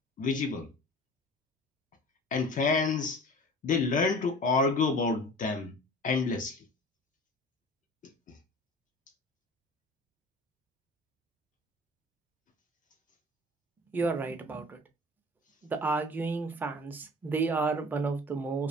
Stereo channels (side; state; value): both; normal; correlation 0.41